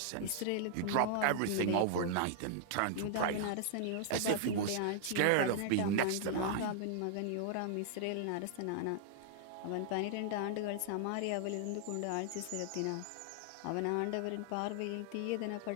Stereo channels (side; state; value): both; different; correlation -0.01